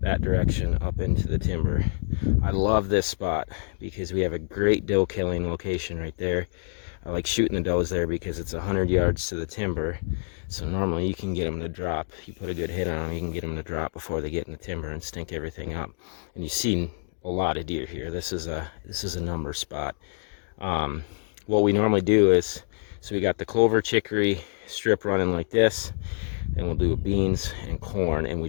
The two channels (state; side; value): silent; right; digital silence